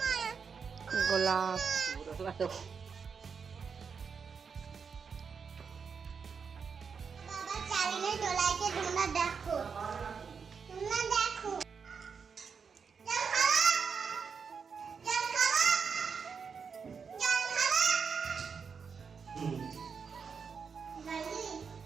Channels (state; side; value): quieter; left; 6.0 dB